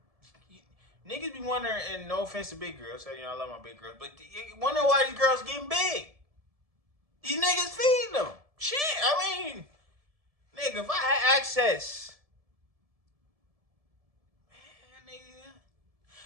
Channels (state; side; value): late; left; 1.7 ms